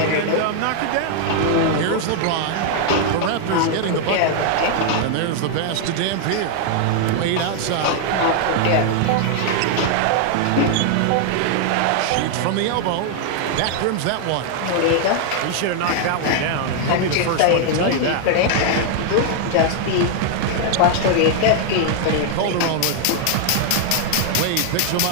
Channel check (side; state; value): both; different; correlation 0.00